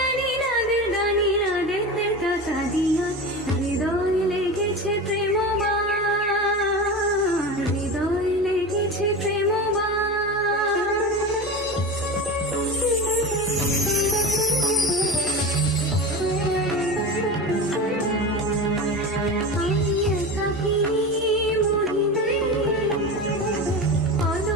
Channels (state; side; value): normal; both; correlation 0.26